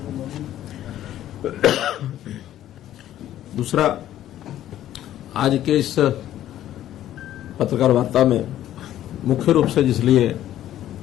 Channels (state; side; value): quieter; right; 12.4 dB